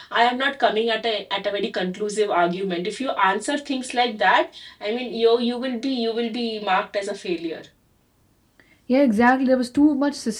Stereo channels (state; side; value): identical; both; correlation 1.00